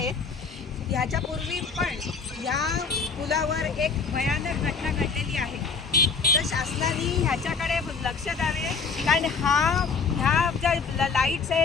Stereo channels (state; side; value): quieter; right; 5.1 dB